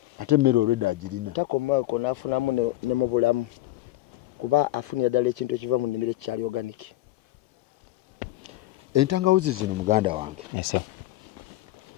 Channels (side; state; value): right; quieter; 16.3 dB